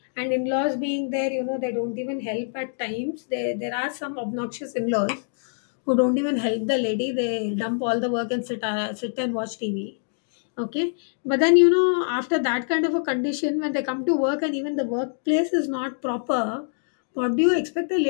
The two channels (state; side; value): silent; right; digital silence